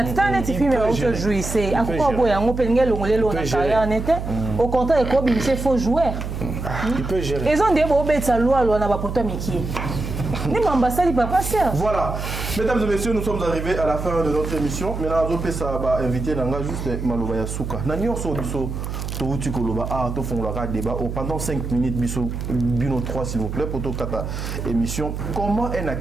Au contraire, il faut jouer. Il peut gérer. Ils ont des bobets à loi, Voilà, mesdames et messieurs, nous sommes arrivés à la fin de notre émission. Maintenant, on va inviter juste Malobaya Souka. Nous sommes débat pendant 5 minutes, Bino 3 s'il vous plaît, pour toute émission. Comment un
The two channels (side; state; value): right; noise; hum, 5 dB below the sound